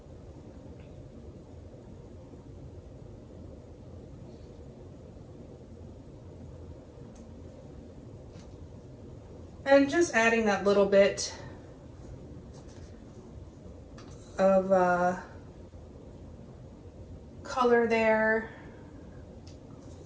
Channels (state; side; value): identical; both; correlation 1.00